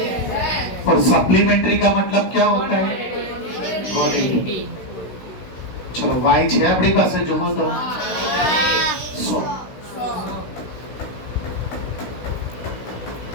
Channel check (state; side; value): late; right; 16 ms